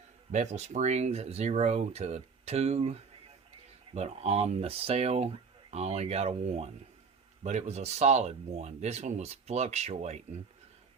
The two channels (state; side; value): quieter; left; 5.3 dB